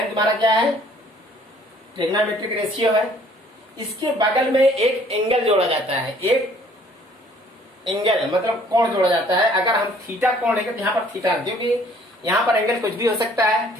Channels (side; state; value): both; normal; correlation 0.58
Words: तुम्हारा क्या है, ट्रिग्नोमेट्रिक रेशियो है। इसके बगल में एक एंगल जोड़ा जाता है, एक एंगल मतलब कोण जोड़ा जाता है। अगर हम थीटा कोण लेंगे तो यहाँ पर थीटा, क्योंकि यहाँ पर एंगल कुछ भी हो सकता है,